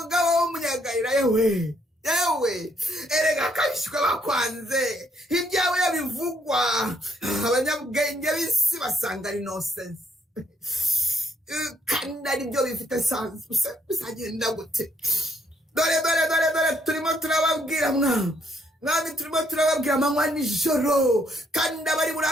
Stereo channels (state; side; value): normal; both; correlation 0.72